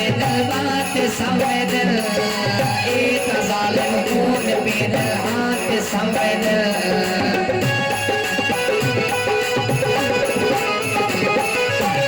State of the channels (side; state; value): both; identical; correlation 1.00